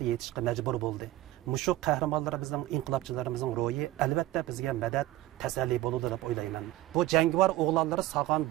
yetishga majbur bo'ldi. Mushu qahramonlarimizning, inqilobchilarimizning ro'yi albatta bizga madad, tasalli bo'ladi deb o'ylayman. Bu jangovar o'g'lonlari sog'an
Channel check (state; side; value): quieter; left; 16.2 dB